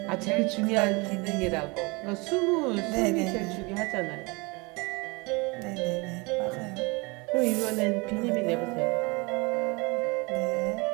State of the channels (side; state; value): left; quieter; 27.2 dB